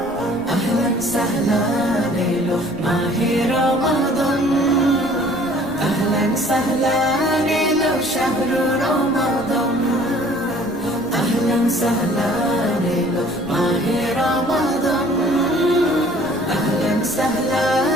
আহলান সাহলান এলো মাহে রমাদান, আহলান সাহলান এলো শাহরু রমাদান। আহলান সাহলান এলো মাহে রমাদান, আহলান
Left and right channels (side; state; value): right; noise; rumble, 22 dB below the sound